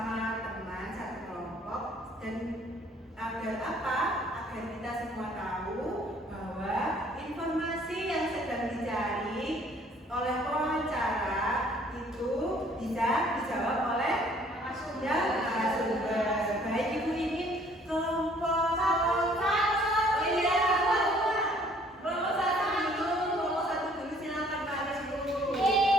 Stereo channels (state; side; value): normal; both; correlation 0.59